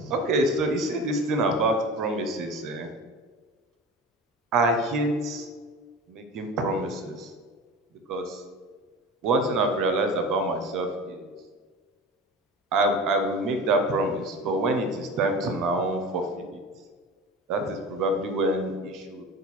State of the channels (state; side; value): normal; both; correlation 0.33